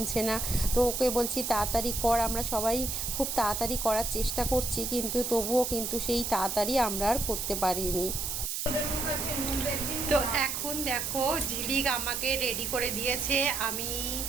না। তো ওকে বলছি তাড়াতাড়ি কর, আমরা সবাই খুব তাড়াতাড়ি করার চেষ্টা করছি, কিন্তু তবুও কিন্তু সেই তাড়াতাড়ি আমরা আর করতে পারিনি। তো এখন দেখো ঝিলিক আমাকে রেডি করে দিয়েছে, আমি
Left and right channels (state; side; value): noise; right; hiss, 2 dB below the sound